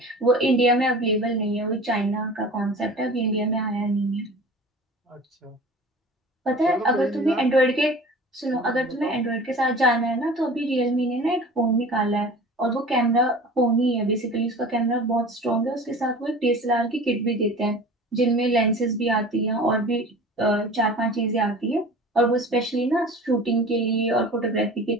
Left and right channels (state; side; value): normal; both; correlation 0.40